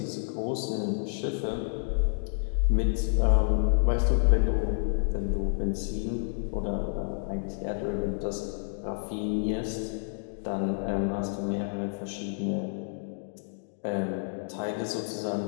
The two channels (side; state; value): right; silent; digital silence